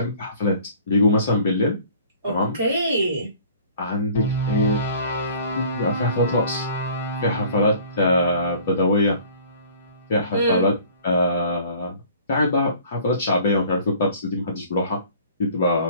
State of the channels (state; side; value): inverted; both; correlation -0.51